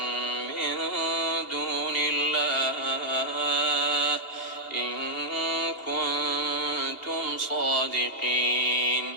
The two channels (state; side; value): late; right; 2.8 ms